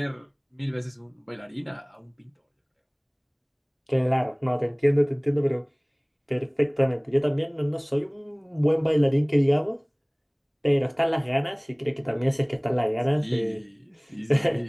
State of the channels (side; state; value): both; identical; correlation 1.00